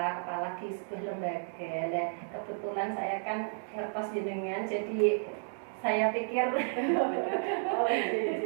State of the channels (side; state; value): left; silent; digital silence